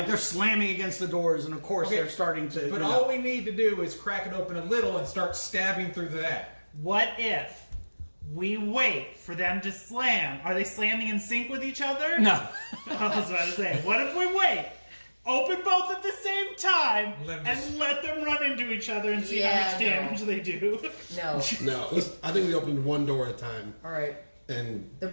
they're slamming against the doors, and of course Okay, they're starting to. But all we need to do is crack it open a little and start stabbing through that. What if we wait for them to slam? Are they slamming in sync with each other? No. I was about to say, what if we wait? Open both at the same time Let 'em and just- let them run into each other and see Yeah, how much damage they do. No. No, I think we opened one door at a time, All right. and They're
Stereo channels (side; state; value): both; inverted; correlation -1.00